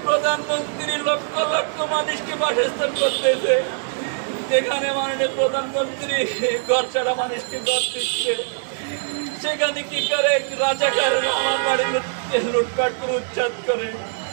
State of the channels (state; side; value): silent; left; digital silence